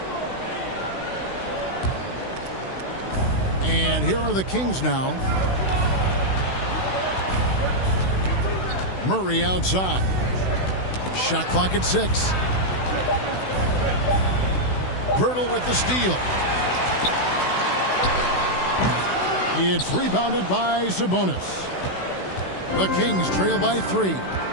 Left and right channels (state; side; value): late; right; 16 ms